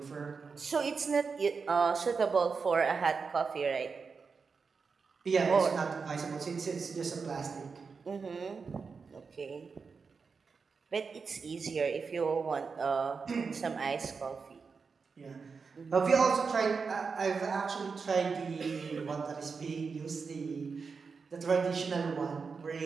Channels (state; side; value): quieter; left; 5.1 dB